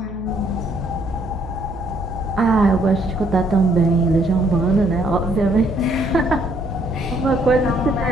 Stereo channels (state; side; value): noise; right; hum, 14 dB below the sound